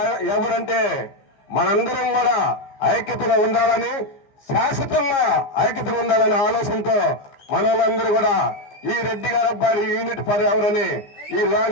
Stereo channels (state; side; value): late; right; 15 ms